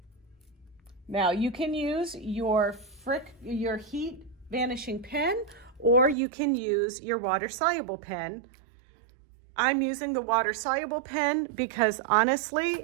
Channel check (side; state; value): left; drops out; at 6.2 s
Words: Now you can use your heat vanishing pen, or you can use your water soluble pen. I'm using the water soluble pen because